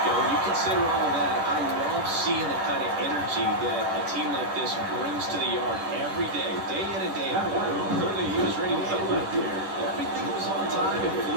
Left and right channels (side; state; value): left; late; 10 ms